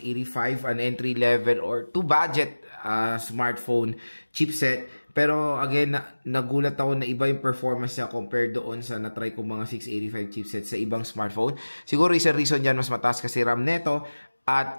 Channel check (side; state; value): both; inverted; correlation -1.00